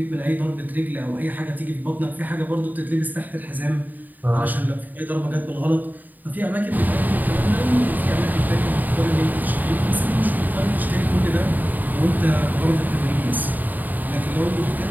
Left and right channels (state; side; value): late; left; 0.086 ms